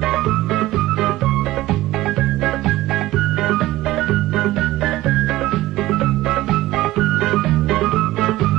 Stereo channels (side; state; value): left; quieter; 16.6 dB